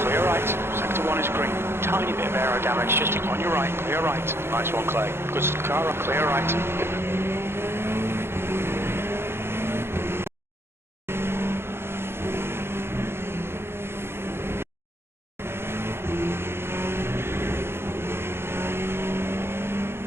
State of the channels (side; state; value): left; late; 0.12 ms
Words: right. Sector 1 is green. Tiny bit of aero damage just on your right. Clear right. Nice one, Clay. Good car. Clear right.